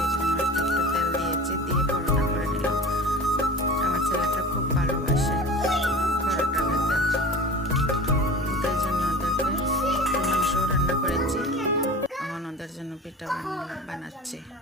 জন্য একটু তেল দিয়েছি, দিয়ে পরোটা করে নিলাম। আমার ছেলেটা খুব ভালোবাসে পরোটা খেতে, তাই জন্য ওদেরকে মাংস রান্না করেছি। এখন ওদের জন্য পিঠা বানাচ্ছি।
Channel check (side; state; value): both; normal; correlation 0.36